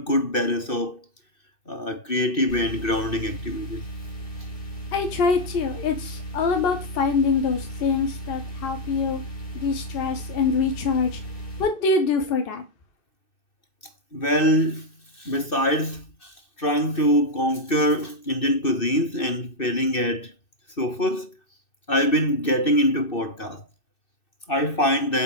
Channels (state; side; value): late; right; 2.6 ms